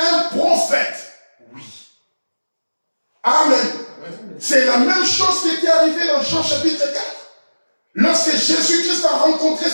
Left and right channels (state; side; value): inverted; both; correlation -1.00